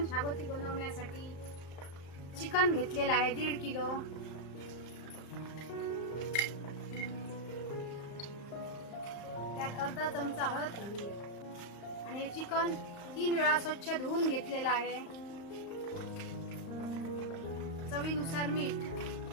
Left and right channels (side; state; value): right; late; 35 ms